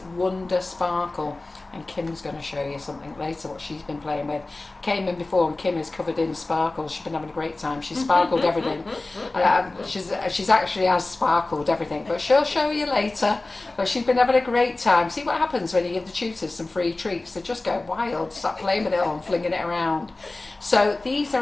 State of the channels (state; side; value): quieter; right; 3.1 dB